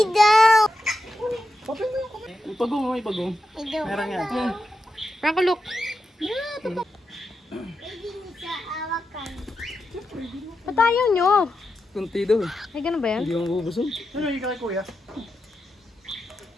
down. Ipagong mo, ipagong. Meron yan. Franco, look. Ba't ayaw nyo? Kunti daw eh. Ay, ganun ba yan? Hindi mo bubusog. Ano yung kay kuya?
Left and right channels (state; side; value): normal; both; correlation 0.88